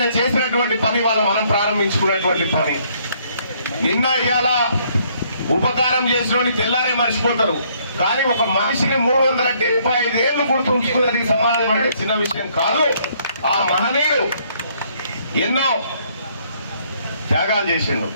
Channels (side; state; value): both; inverted; correlation -0.66